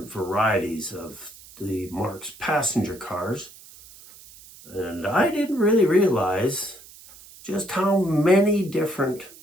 varieties of the Marx passenger cars. And I didn't really realize just how many different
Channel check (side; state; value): right; noise; hiss, 20 dB below the sound